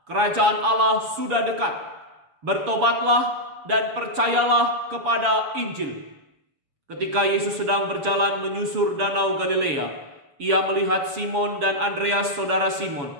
kerajaan Allah sudah dekat. Bertobatlah dan percayalah kepada Injil. Ketika Yesus sedang berjalan menyusur danau Galilea, ia melihat Simon dan Andreas, saudara Simon.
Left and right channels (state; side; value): late; left; 7.0 ms